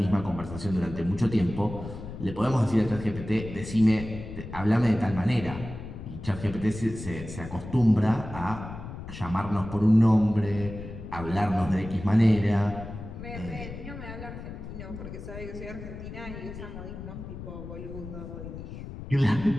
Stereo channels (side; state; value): left; noise; rumble, 11 dB below the sound